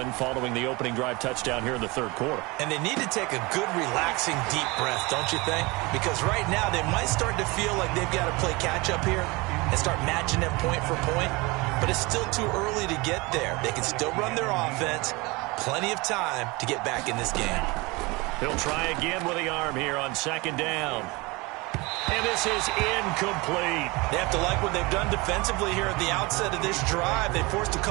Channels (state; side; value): quieter; left; 24.7 dB